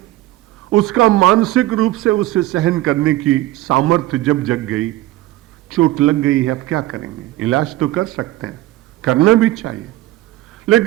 उसका मानसिक रूप से उसे सहन करने की सामर्थ्य जब जग गई, चोट लग गई है, अब क्या करेंगे? इलाज तो कर सकते हैं, करना भी चाहिए,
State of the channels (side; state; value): left; quieter; 16.7 dB